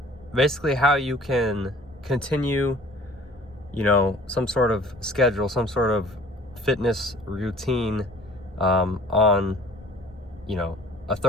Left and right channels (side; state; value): both; normal; correlation 0.50